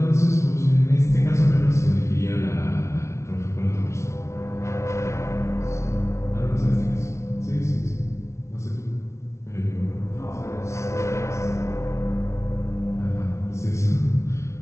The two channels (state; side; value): late; right; 0.13 ms